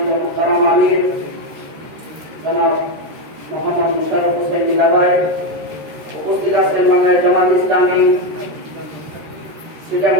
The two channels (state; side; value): late; left; 13 ms